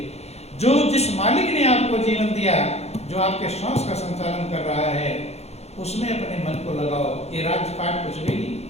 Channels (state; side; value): late; right; 0.31 ms